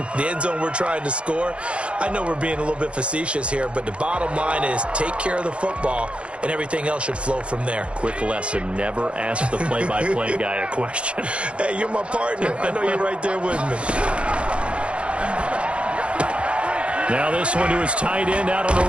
The end zone we're trying to score. I know we're being a little bit facetious here, but the bottom line is take care of the football, and everything else should flow from there. Quick lesson, never ask the play-by-play guy a question. Hey, you're my partner. I know you're right there with me. Now this one to his tight end out on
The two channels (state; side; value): late; left; 0.060 ms